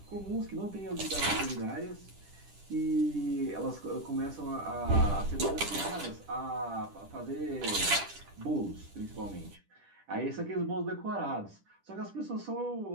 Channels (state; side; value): late; left; 10 ms